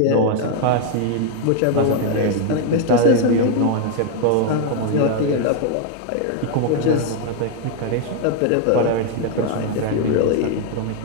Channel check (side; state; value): both; different; correlation 0.00